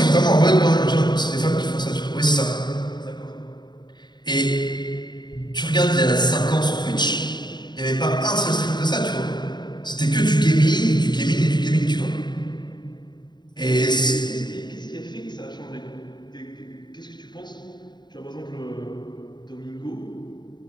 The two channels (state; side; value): late; right; 0.21 ms